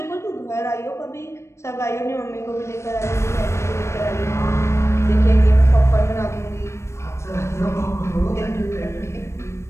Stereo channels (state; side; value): late; right; 0.13 ms